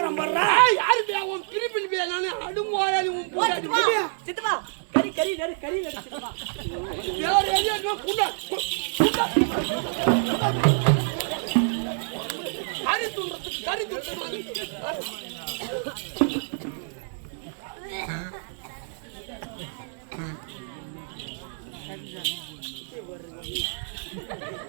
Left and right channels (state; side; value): silent; left; 58 dB below the other